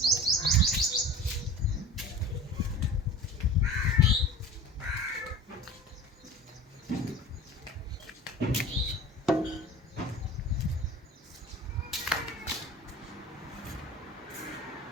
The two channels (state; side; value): normal; both; correlation 0.38